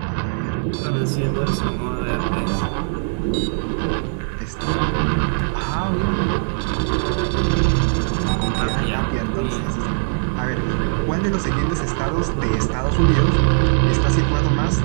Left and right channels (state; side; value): silent; left; 62 dB below the other